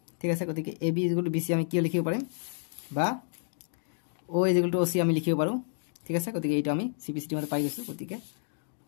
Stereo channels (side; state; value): right; silent; digital silence